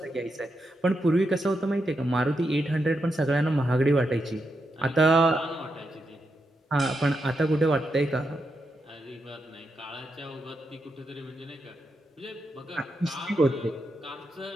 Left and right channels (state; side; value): normal; both; correlation 0.84